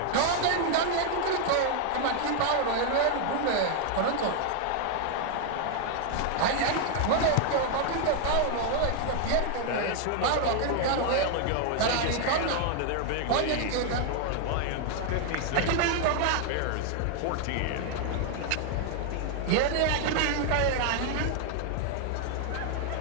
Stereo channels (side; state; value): both; different; correlation 0.00